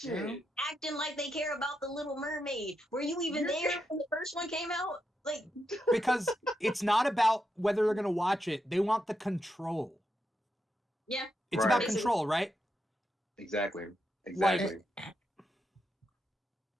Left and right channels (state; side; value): normal; both; correlation 0.84